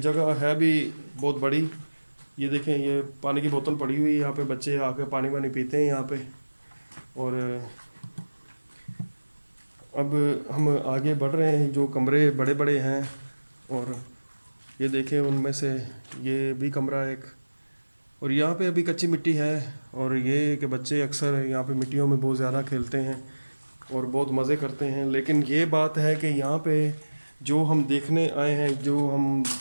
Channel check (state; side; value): inverted; both; correlation -1.00